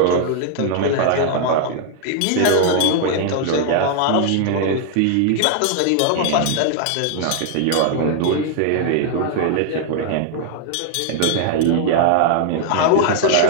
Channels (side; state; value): both; different; correlation 0.00